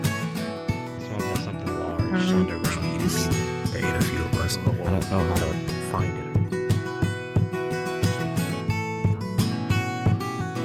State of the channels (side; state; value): both; identical; correlation 1.00